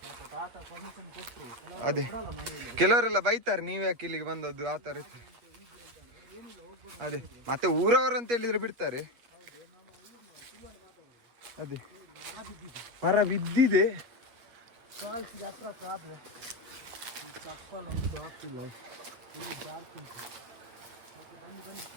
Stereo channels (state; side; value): late; left; 8.3 ms